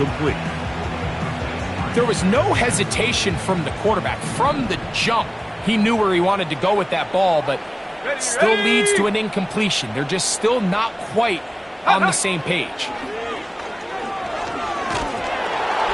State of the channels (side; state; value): both; identical; correlation 1.00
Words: There was no hesitation from the quarterback. From the jump, he knew where he wanted to go with that ball, but still leads to an incompletion. They're just still not quite on the same page.